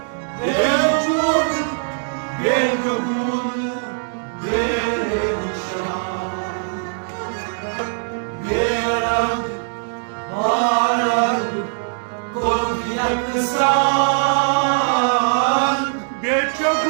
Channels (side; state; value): left; silent; digital silence